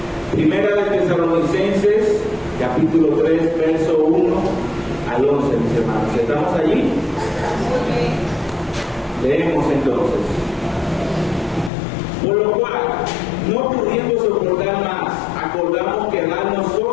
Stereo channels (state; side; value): drops out; right; at 11.7 s